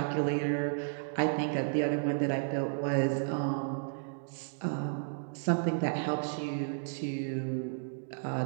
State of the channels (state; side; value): silent; left; digital silence